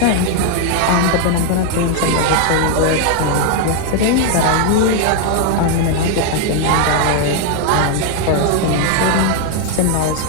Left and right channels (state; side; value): different; both; correlation 0.00